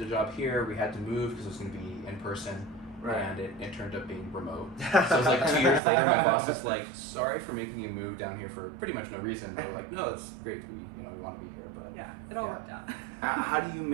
a job here. We had to move because it was going to be in person, and it turned up being remote. So it was like 2 years later, my boss was like, sorry for making you move down here for pretty much no reason. But we're like, no, it's great. We want to be here, but yeah, it all worked out. How do you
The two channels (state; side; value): drops out; left; at 5.8 s